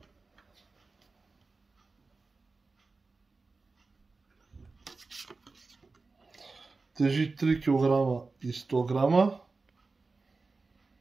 Тежи 3 кг и 100 грама.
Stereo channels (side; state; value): left; quieter; 3.9 dB